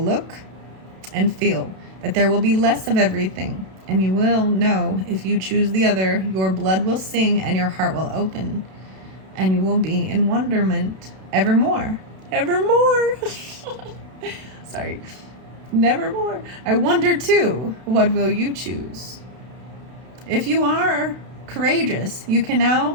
look and feel, that there will be less of everything. And you will know if you choose the other, your blood will sing and your heart will open. And you will be in wonderment evermore. Evermore. Sorry. Nevermore. I wonder too, what will you choose? If you are courageous, you can now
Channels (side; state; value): left; late; 32 ms